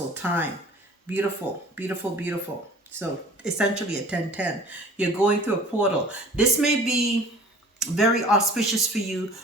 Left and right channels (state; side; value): normal; both; correlation 0.47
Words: time. Beautiful, beautiful, beautiful. So essentially a 10-10. You're going through a portal. This may be very auspicious for you